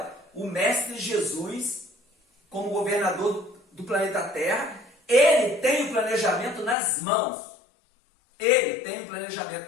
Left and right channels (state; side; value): drops out; right; at 6.8 s